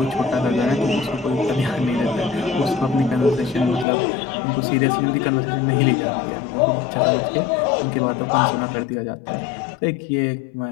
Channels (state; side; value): drops out; right; at 3.9 s